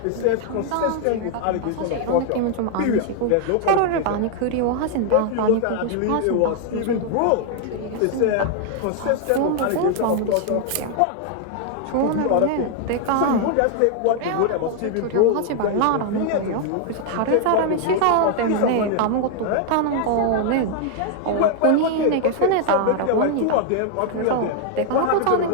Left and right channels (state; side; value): different; both; correlation 0.00